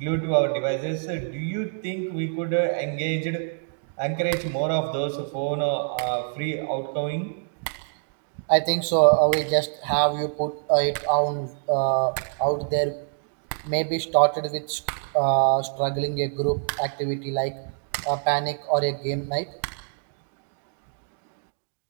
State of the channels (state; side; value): silent; left; digital silence